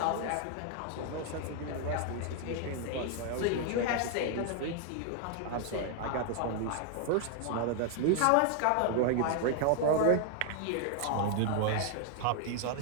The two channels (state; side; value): different; both; correlation 0.00